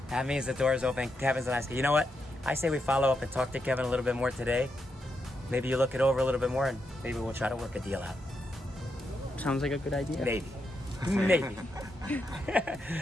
That means the door is open. Kevin's a nice guy. You know what? I say we follow up and talk to Kevin a little bit more today. Maybe you look it over a little bit more, and maybe we'll try to work a deal out. Sounds like a good idea. Maybe.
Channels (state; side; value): normal; both; correlation 0.83